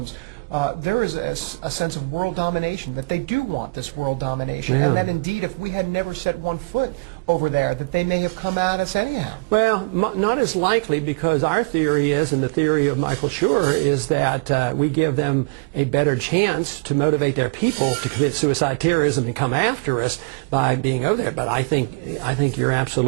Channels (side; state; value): left; quieter; 29.9 dB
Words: there is a sense of world domination, that they do want this world domination, and that indeed if we had never set one foot over there, that they may have come at us anyhow. Well, not as likely, because our theory is, and the theory of Michael Schur, is that we give them a better chance to motivate their people to commit suicide terrorism and come after us by being over there. But I think you're